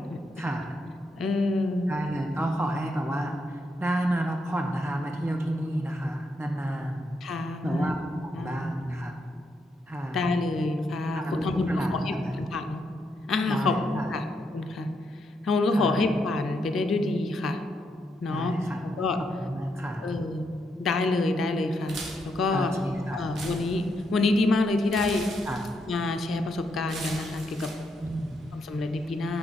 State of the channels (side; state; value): both; normal; correlation 0.79